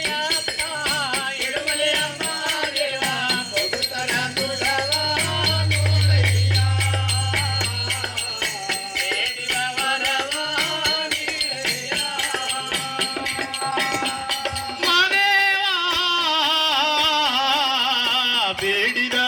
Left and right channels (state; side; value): identical; both; correlation 1.00